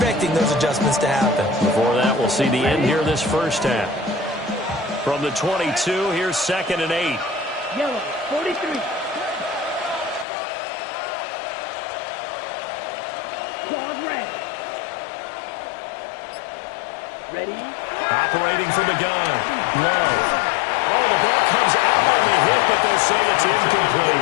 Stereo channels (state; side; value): drops out; right; at 10.2 s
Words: those adjustments to happen? Before that, we'll see the end here this first half. From the 22, here's 2nd and 8. Yellow, 43. Dog red. Ready? Operating from the gun. Love. Oh, the ball comes out on the hit, but they'll say it's